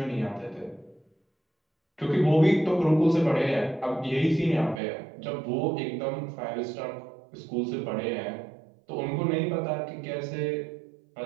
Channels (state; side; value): drops out; left; at 4.8 s